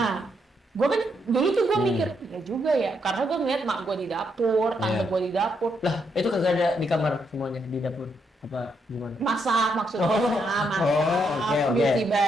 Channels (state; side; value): normal; both; correlation 0.78